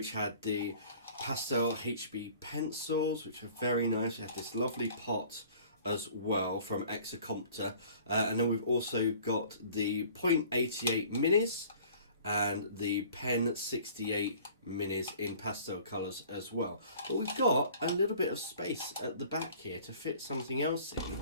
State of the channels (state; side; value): inverted; both; correlation -0.50